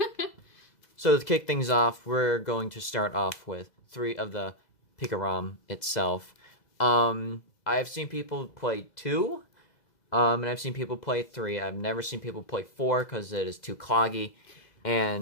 So to kick things off, we're going to start off with 3 of the Pikarom itself. I've seen people play 2, and I've seen people play 3. I've never seen people play 4 because it is too cloggy.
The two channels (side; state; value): right; late; 2.0 ms